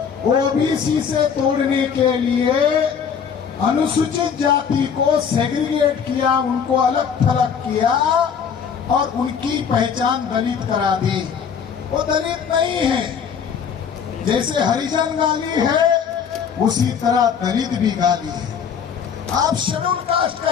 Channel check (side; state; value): right; quieter; 7.1 dB